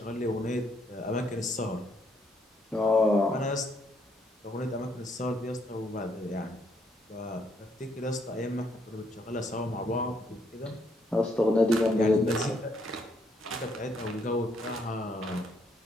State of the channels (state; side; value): normal; both; correlation 0.72